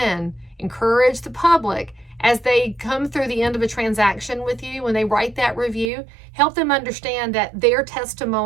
encourage the public as they come through the end of a transaction with you, when they write that review, help them understand that their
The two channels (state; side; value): drops out; left; at 5.9 s